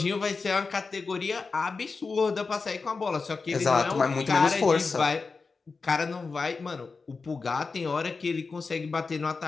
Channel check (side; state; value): right; quieter; 4.4 dB